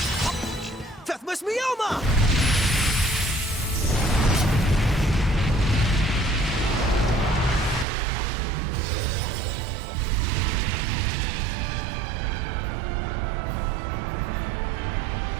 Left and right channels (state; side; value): drops out; left; at 7.9 s